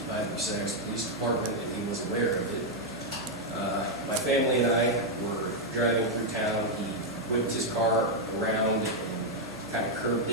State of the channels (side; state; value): right; noise; hum, 22 dB below the sound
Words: by the Bucyrus Police Department, and he was aware of it. My family and I were driving through town. He whipped his car around and kind of curved